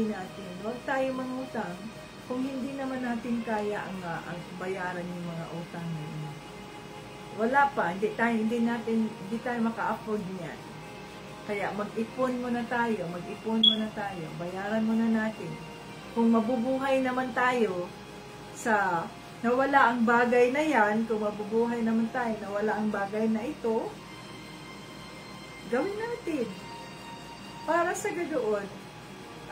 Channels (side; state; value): both; identical; correlation 1.00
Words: natin. Huwag tayo mangutang kung hindi naman natin kaya ang bayaran yung mga utang na wala pa, hindi tayo maka-afford niyan. Kaya mag-ipon muna tayo, bayaran muna natin. Kung mabubuhay naman tayo sa nawala ang bagay na yan, kung mabubuhay naman tayo nawala ang bagay na ito, gawin natin. Para sa ganoon